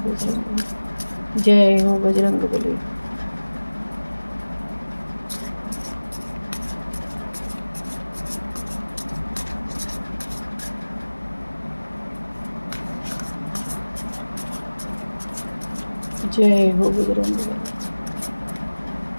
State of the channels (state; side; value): inverted; both; correlation -1.00